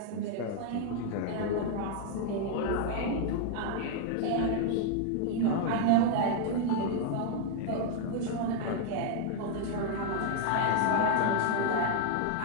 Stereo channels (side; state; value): both; different; correlation 0.00